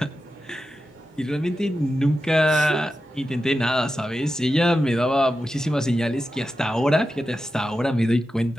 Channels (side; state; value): both; normal; correlation 0.91